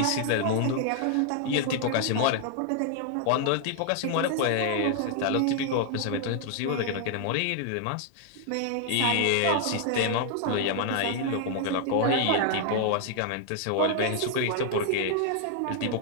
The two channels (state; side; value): different; both; correlation 0.00